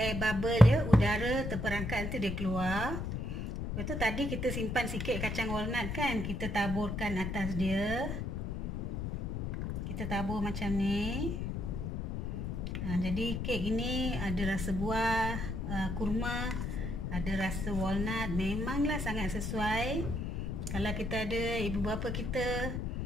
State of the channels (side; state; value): left; noise; rumble, 3 dB below the sound